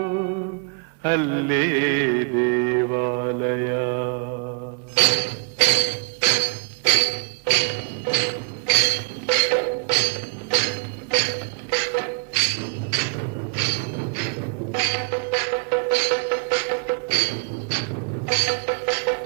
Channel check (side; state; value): left; quieter; 38.0 dB